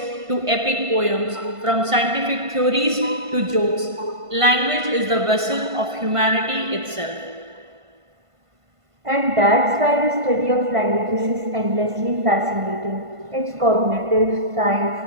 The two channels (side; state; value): left; late; 1.5 ms